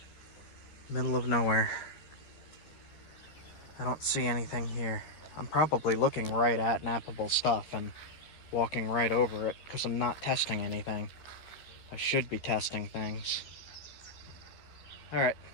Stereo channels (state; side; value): late; right; 13 ms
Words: Middle of nowhere. I don't see anything here. I'm probably looking right at nappable stuff and walking right over it because I'm not testing anything. I should be testing things. All right.